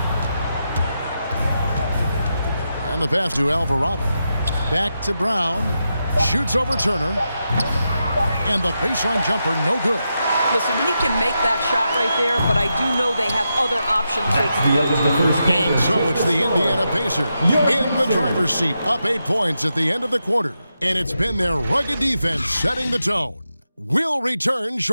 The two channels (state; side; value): inverted; both; correlation -0.87